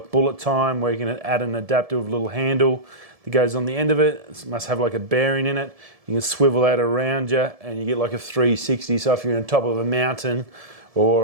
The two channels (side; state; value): left; late; 1.7 ms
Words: bullet time, where you can add an adaptive little handle that goes on the end of it. It must have like a bearing in it. You can swivel that around you and you get like a 360. So if you're on top of a mountain